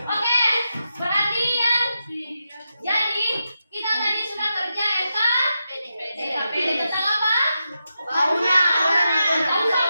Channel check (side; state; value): both; inverted; correlation -0.87